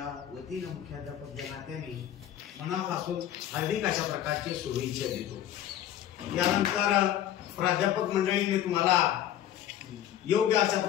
वतीनं मुख्याध्यापक या नात्याने मनापासून हार्दिक अशा प्रकारची शुभेच्छा देतो. यानंतर प्राध्यापक मंडळीने तुम्हाला योग्य अशा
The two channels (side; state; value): right; quieter; 11.4 dB